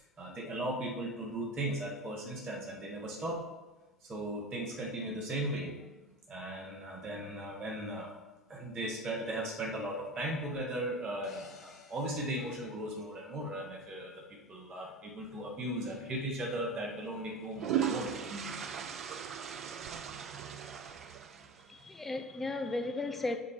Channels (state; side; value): normal; both; correlation 0.32